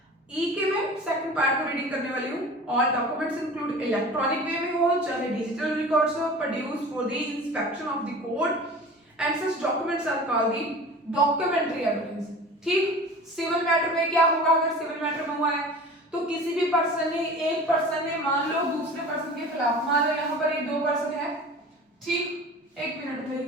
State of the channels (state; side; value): normal; both; correlation 0.39